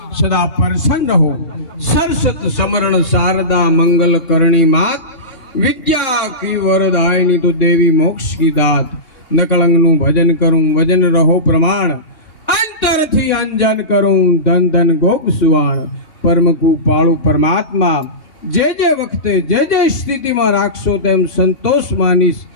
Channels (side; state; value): right; late; 3.6 ms